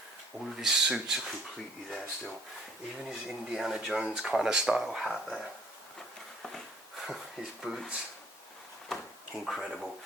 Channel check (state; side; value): normal; both; correlation 0.59